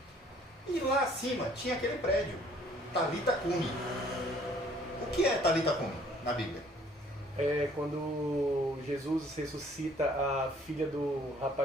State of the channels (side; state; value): both; normal; correlation 0.59